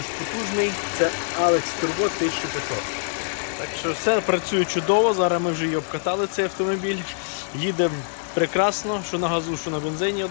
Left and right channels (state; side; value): silent; right; 59 dB below the other